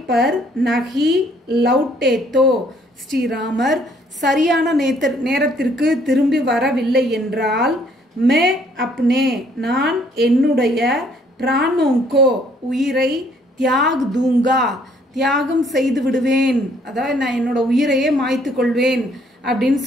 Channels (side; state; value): both; normal; correlation 0.64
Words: பர் நஹி லவுட்டே தோ ஸ்ரீராமர் சரியான நேரத்திற்கு திரும்பி வரவில்லை என்றால் மே அப்னே நான் என்னுடைய பிராணோங்கோ உயிரை தியாக் தூங்கா தியாகம் செய்து விடுவேன் அதாவது நான் என்னோட உயிரையே மாய்த்து கொள்வேன் அப்படின்னு